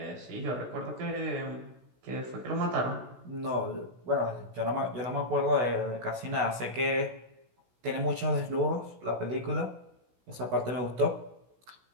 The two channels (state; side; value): late; left; 16 ms